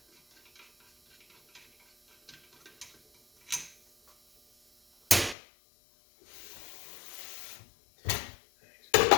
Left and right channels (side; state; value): right; drops out; at 5.4 s